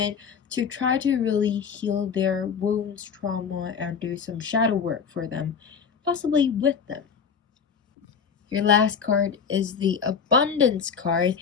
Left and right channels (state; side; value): quieter; right; 6.5 dB